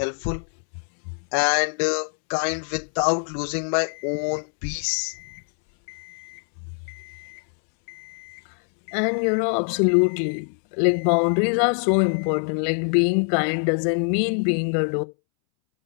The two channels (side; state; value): right; silent; 63 dB below the other